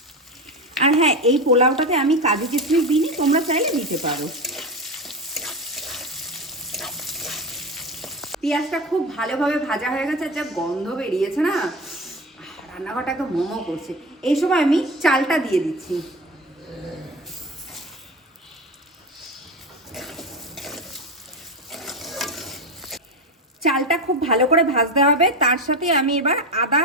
আর হ্যাঁ, এই পোলাওটাতে আমি কাজু কিশমিশ দিইনি, তোমরা চাইলে দিতে পারো। পেঁয়াজটা খুব ভালোভাবে ভাজা হয়ে গেছে, যা গন্ধ বেরিয়েছে না, রান্নাঘরটাকে মোমো করছে। এই সময় আমি চালটা দিয়ে দিচ্ছি। চালটা খুব ভালো করে ভাজতে হবে। তার সাথে আমি এবার আদা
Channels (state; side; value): normal; both; correlation 0.22